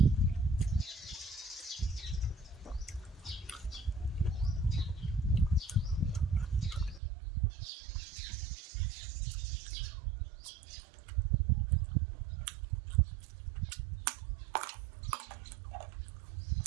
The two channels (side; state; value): left; drops out; at 7.0 s